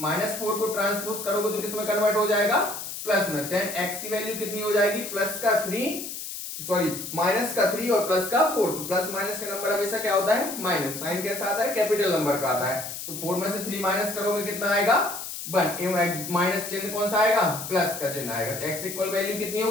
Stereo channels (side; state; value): left; noise; hiss, 8 dB below the sound